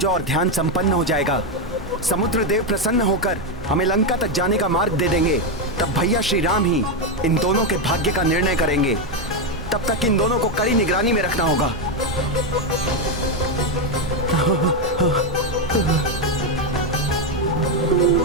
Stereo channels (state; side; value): normal; both; correlation 0.06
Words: और ध्यान संपन्न हो जाएगा, समुद्र देव प्रसन्न होकर हमें लंका तक जाने का मार्ग दे देंगे, तब भैया श्री राम ही इन दोनों के भाग्य का निर्णय करेंगे। तब तक इन दोनों को कड़ी निगरानी में रखना होगा।